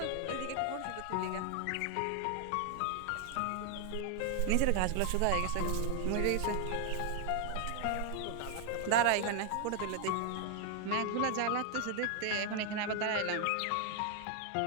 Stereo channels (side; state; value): both; different; correlation 0.00